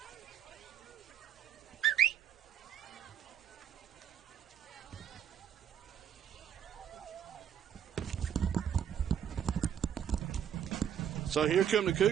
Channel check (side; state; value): left; quieter; 9.3 dB